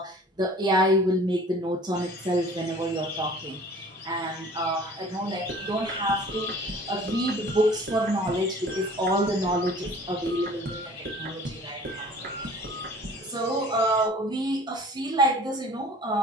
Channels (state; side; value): normal; both; correlation 0.47